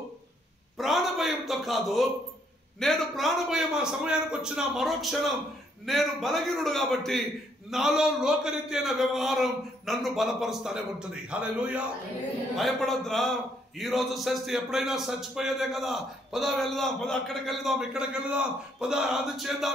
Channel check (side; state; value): both; normal; correlation 0.70